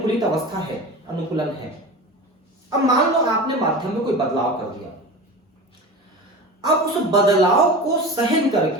अवस्था है, अनुकूलन है। अब मान लो आपने माध्यम में कोई बदलाव कर दिया, अब उस बदलाव को सहन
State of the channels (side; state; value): both; normal; correlation 0.31